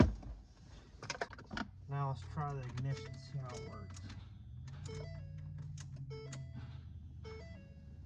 Now let's try the ignition, see how it works.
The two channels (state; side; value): identical; both; correlation 1.00